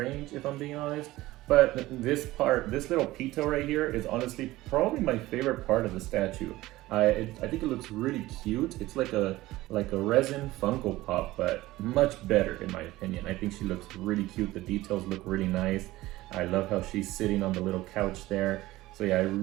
if I'm being honest. But this little Pitou right here is honestly probably my favorite part of the statue. I think it looks really cute. It's like a resin Funko Pop, but much better in my opinion. I think she looks really cute. The details look really nice. I love how she's sitting on the little couch there. So yeah, I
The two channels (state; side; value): quieter; left; 17.7 dB